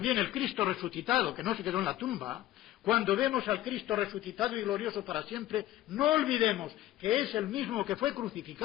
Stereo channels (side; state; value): right; quieter; 14.5 dB